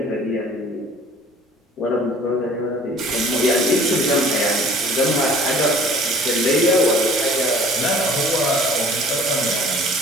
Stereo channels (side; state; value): both; normal; correlation 0.50